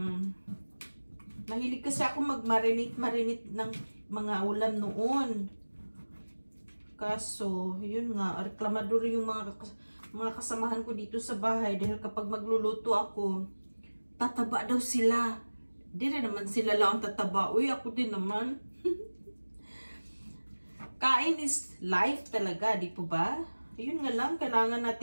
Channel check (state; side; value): inverted; both; correlation -1.00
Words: mahilig kasi ako mag-marinate ng mga ulam noon. Kaso, yun nga, reklamador yung mga kasamahan ko dito sa bahay dahil kapag magluluto ako, tataba daw sila. Di rin naman sila lang tataba. Uy, ako din naman. Kain is life talaga, di po ba? Yun nga lang, kailangan